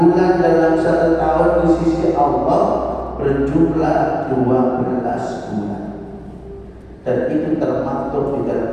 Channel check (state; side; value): identical; both; correlation 1.00